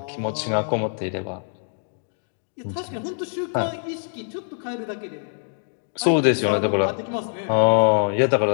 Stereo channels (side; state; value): right; silent; digital silence